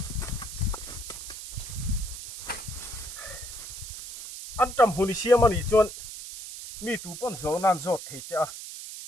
an tram huni siam ani chuan mi tu pon zo nan zot thei cha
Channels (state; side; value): noise; right; hiss, 10 dB below the sound